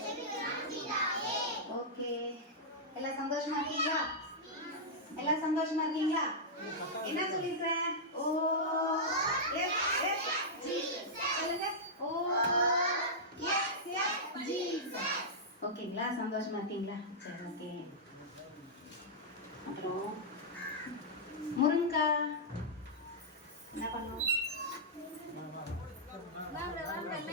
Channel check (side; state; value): both; normal; correlation -0.10